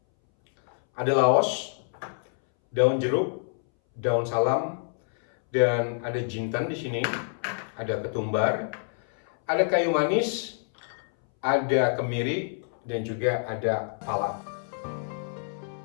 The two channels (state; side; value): silent; right; 60 dB below the other